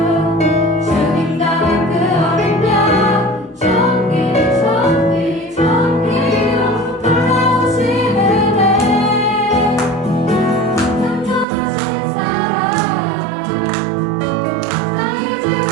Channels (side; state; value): left; drops out; at 11.5 s